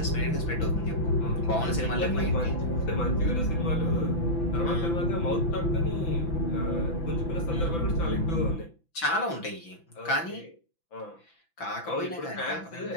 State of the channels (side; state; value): right; late; 6.0 ms